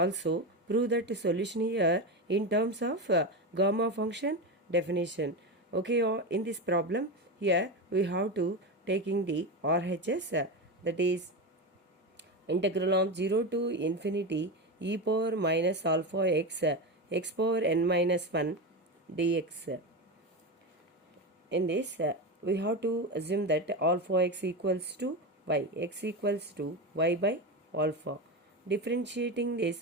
prove that the solution here in terms of gamma function definition. Okay, in this problem here we have to taking the RHS that is integral of 0 to infinity e power minus alpha x power n minus 1 dx. In this we have to assume that alpha x equals to y by alpha. Differentiating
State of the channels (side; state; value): both; normal; correlation 0.18